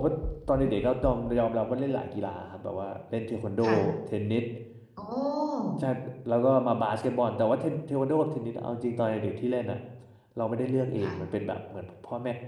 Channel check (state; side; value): identical; both; correlation 1.00